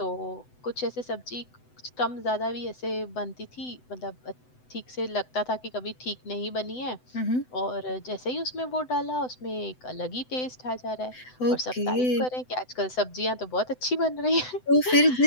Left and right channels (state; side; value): late; right; 7.9 ms